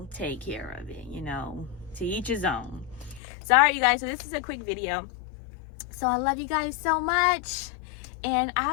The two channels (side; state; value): right; drops out; at 3.2 s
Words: take care of it. To each his own. So, all right, you guys. So this is a quick video. So I love you guys so much, and